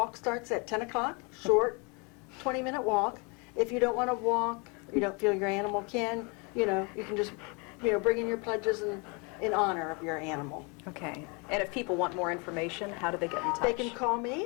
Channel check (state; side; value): quieter; right; 31.6 dB